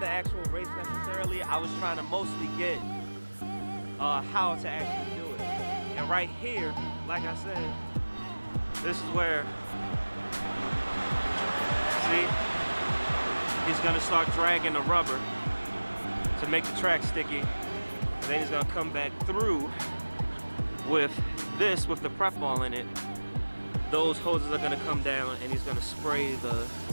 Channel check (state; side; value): inverted; both; correlation -1.00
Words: actual race necessarily. I was trying to mostly get how to actually do it. And right here, like I said, this is where, see, he's gonna start dragging the rubber to make the track sticky. And then he's gonna come back through with this, with the prep ball in it. Those hoses are gonna come down and he's gonna spray the